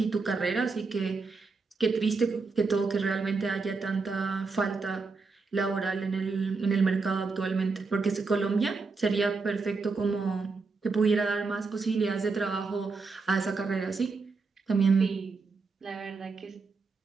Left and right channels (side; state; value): left; quieter; 4.3 dB